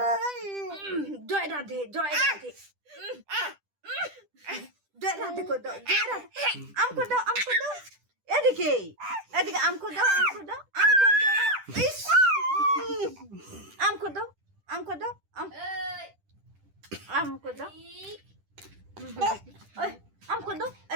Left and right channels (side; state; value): left; late; 10 ms